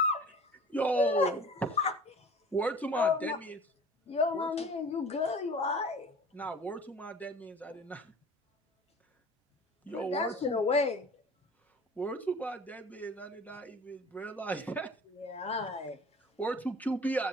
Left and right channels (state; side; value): normal; both; correlation 0.43